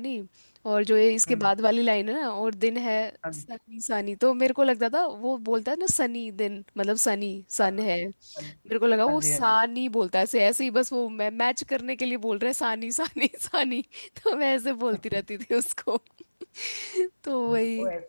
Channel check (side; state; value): both; inverted; correlation -1.00